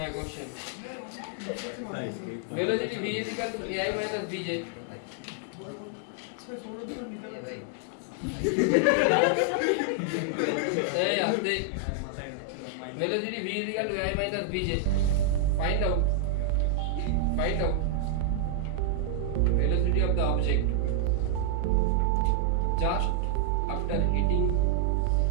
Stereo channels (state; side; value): different; both; correlation -0.01